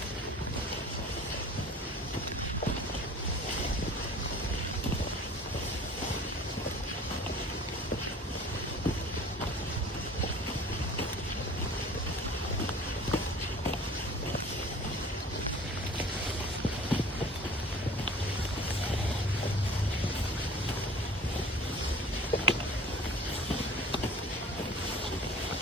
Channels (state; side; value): normal; both; correlation 0.44